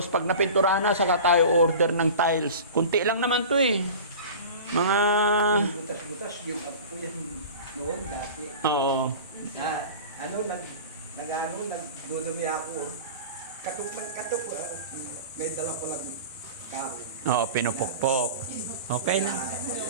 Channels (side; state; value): both; inverted; correlation -0.36